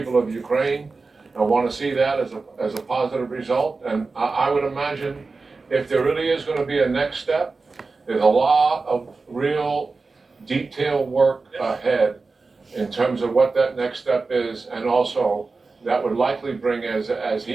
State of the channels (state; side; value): quieter; left; 4.0 dB